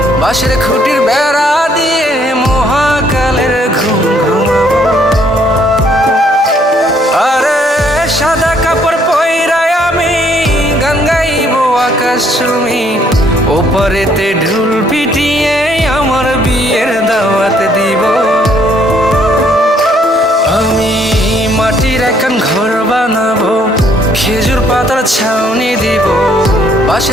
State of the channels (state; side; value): normal; both; correlation 0.66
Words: বাঁশের খুঁটির বেড়া দিয়ে মহাকালের ঘুম ঘুমাবো। আরে সাদা কাপড় পয়রায় আমি গান গাইবো আকাশ চুমি, ওপারেতে ঢোল পিটিয়ে আমার বিয়ের দাওয়াত দিব। আমি মাটির একান ঘর বানাবো, খেজুর পাতার ছাউনি দিব,